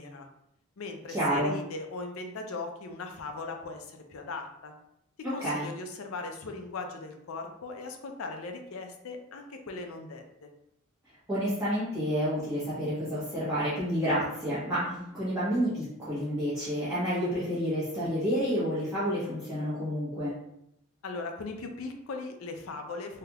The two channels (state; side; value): normal; both; correlation 0.33